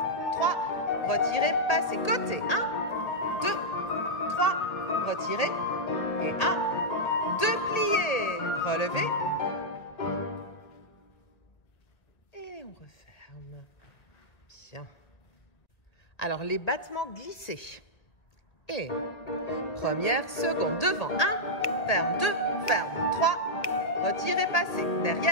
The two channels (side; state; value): right; late; 1.6 ms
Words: 3, retirez, passez, côté, 1, 2, 3, retirez, et 1, 2, pliez, relevez, et on referme. Bien. Alors, les battements glissés. Et première, seconde, devant, 1, ferme, 2, ferme, 3, retirez, passez,